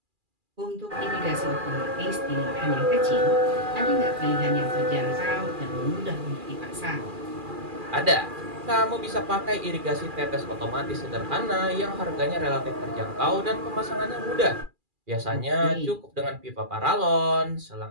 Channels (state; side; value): late; left; 2.4 ms